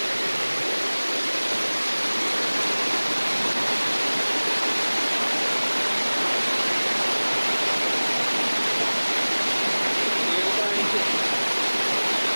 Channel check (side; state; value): both; inverted; correlation -1.00